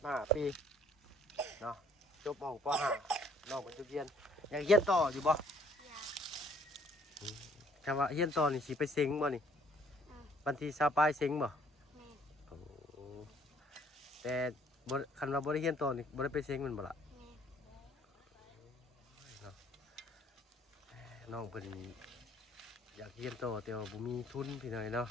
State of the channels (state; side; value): normal; both; correlation 0.61